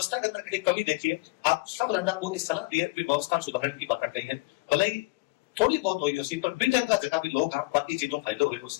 के अंदर कमी देखिए। आप सब राजा को इस सलाह दी है कि व्यवस्था सुधारने की बात कही है, भले ही थोड़ी बहुत हुई उसी पर ब्रिटेन का जगह भी लोग बाकी चीजों फायदे हुए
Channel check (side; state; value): right; quieter; 24.0 dB